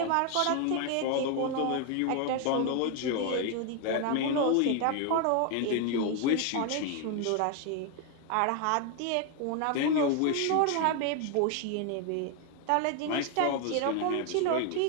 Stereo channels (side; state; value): both; different; correlation 0.01